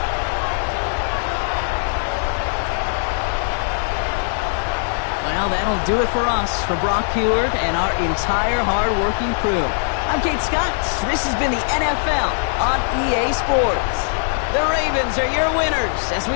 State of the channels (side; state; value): right; silent; 58 dB below the other